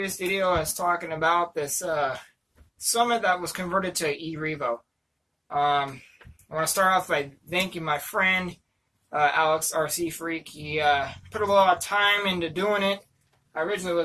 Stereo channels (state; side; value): identical; both; correlation 1.00